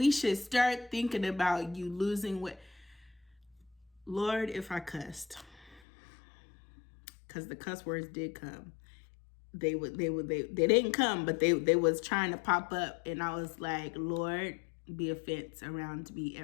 should start thinking about you losing weight. Lord, if I cussed, because the cuss words did come. They didn't come, but they was trying to pop up, and I was like, Lord, be a fence around me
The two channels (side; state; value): right; drops out; at 5.8 s